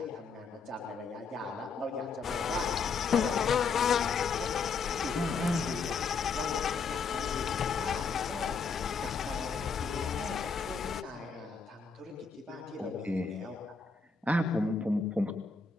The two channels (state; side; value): quieter; right; 5.1 dB